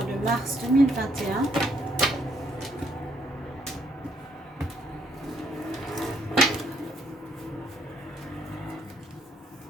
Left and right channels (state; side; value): normal; both; correlation 0.70